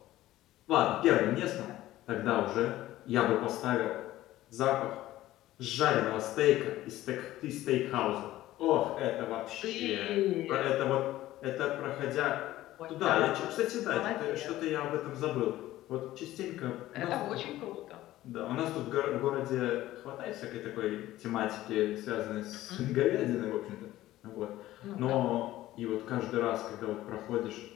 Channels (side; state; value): right; quieter; 15.3 dB